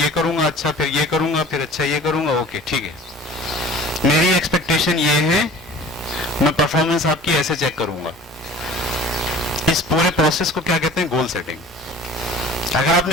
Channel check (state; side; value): normal; both; correlation 0.45